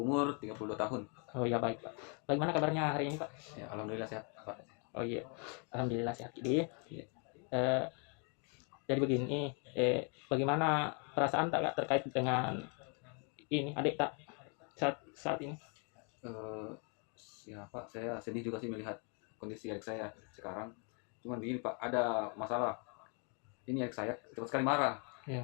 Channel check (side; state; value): right; quieter; 36.9 dB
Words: 32 tahun. Oh iya baik Pak, bagaimana kabarnya hari ini Pak? Ya, alhamdulillah sehat, Pak. Oh iya, Alhamdulillah sehat. Jadi, Iya. eh, jadi begini, bagaimana perasaan Tak Kak terkait dengan ini adik Tak saat ini? Eh, ya Pak, saya sedih juga sih melihat kondisi adik saya sekarang. Cuman begini Pak, ada masalah. Ini adik saya cepat sekali marah. Ya.